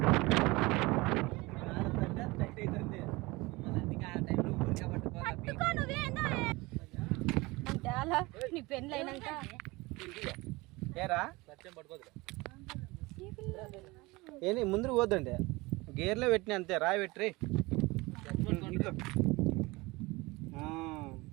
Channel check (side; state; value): left; quieter; 22.8 dB